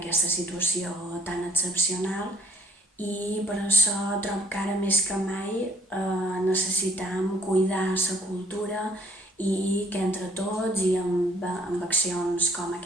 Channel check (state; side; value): normal; both; correlation 0.60